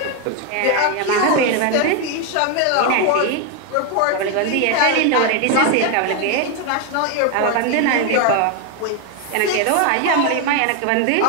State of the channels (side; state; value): both; different; correlation 0.01